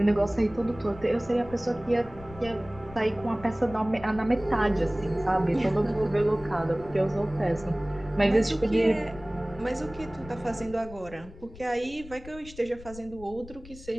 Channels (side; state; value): left; noise; rumble, 17 dB below the sound